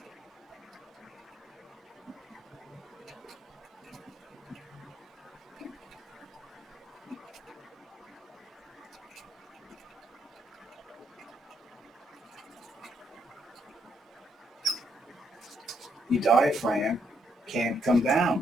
The diaphragm can't come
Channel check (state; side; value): normal; both; correlation 0.74